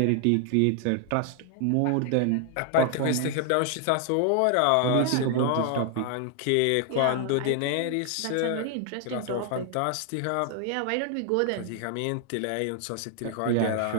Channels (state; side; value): different; both; correlation 0.00